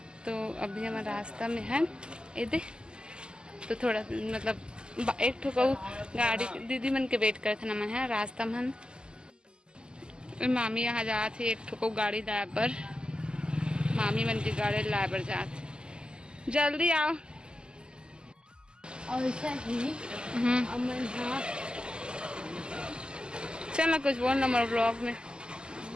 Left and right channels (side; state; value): left; late; 0.048 ms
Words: तो अभी हमारे रास्ता में है इधे तो थोड़ा मतलब एक ठो कहू गाड़ी दीदी मन के वेट करथे न मन है रास्ता में। मामी यहाँ जात है एक ठो गाड़ी लाए पर, मामी मन की गाड़ी लाए पर जात। जल्दी आओ। और ऐसा ही अमन हाँ चल ना कुछ बोल ना मोर ब्लॉग में